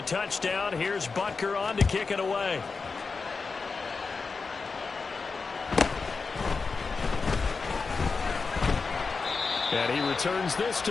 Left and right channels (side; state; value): right; quieter; 4.6 dB